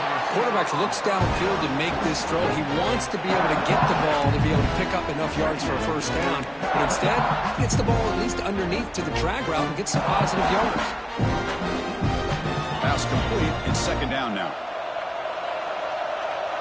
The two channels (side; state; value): both; identical; correlation 1.00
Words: Quarterback looks downfield to make this throw. He wants to be able to get the ball to be able to pick up enough yards for a 1st down. But instead, he gets the ball at least underneath to the drag route and gets some positive yards. Pass complete. It's 2nd down now.